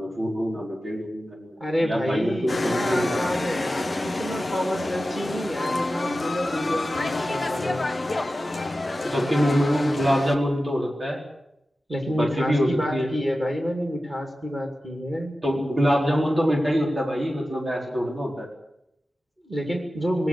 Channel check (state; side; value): normal; both; correlation 0.94